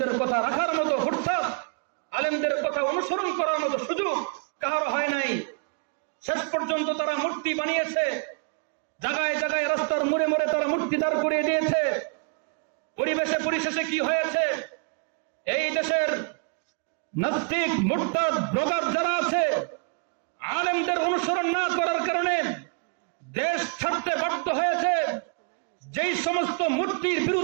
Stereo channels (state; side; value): quieter; left; 39.0 dB